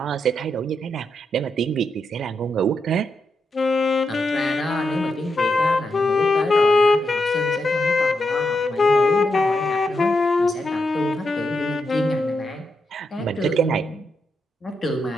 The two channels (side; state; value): both; normal; correlation 0.84